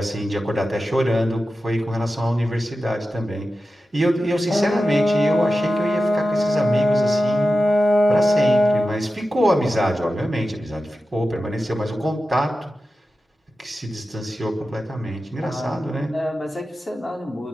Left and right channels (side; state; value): both; normal; correlation 0.93